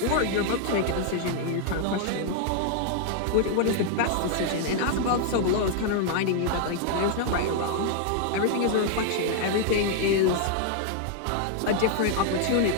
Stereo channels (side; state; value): both; different; correlation 0.00